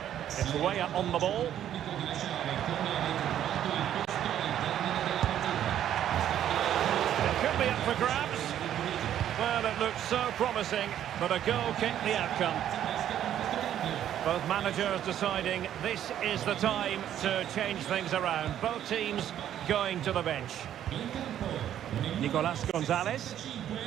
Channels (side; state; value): left; quieter; 10.8 dB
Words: It's way up on the ball. It could be up for grabs. Well, it looked so promising, but a goal kicked the outcome. Both managers deciding this is the time to change things around. Both teams going to the bench. Nicolas Gonzalez.